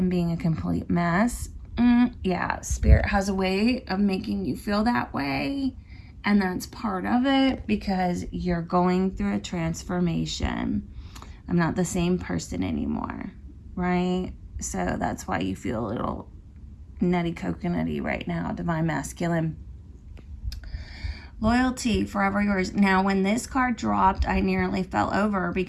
being a complete mess. Yeah, spirit has a way of making you feel that way. And that's part of it because you're going through a transformation. I'm not the same person anymore, right? So that's why you feel a little nutty coconutty right now, divine masculine. Loyalty, forever yours. Now, when this card dropped, I nearly fell over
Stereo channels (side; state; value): both; identical; correlation 1.00